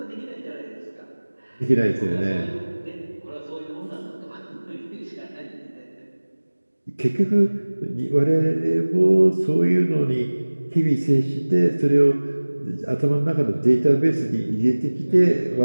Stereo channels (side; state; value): both; inverted; correlation -1.00